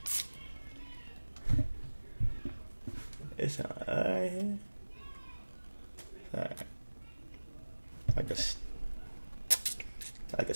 It's alright here. Alright. Like a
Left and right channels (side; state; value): both; inverted; correlation -1.00